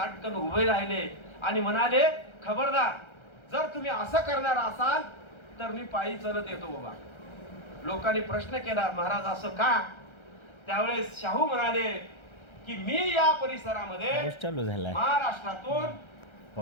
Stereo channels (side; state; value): right; late; 1.3 ms